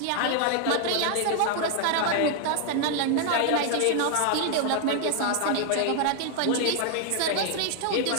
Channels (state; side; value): different; both; correlation 0.00